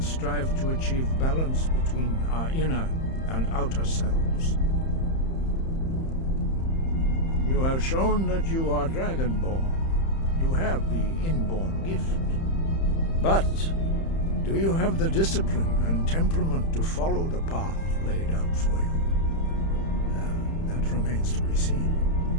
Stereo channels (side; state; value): right; late; 31 ms